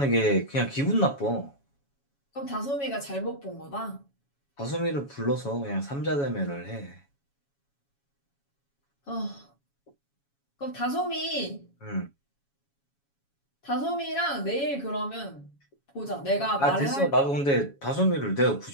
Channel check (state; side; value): late; right; 7.2 ms